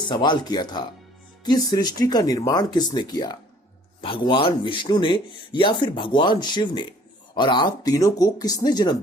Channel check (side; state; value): both; normal; correlation 0.56